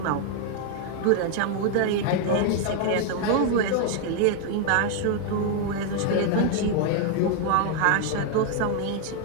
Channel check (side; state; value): both; different; correlation 0.00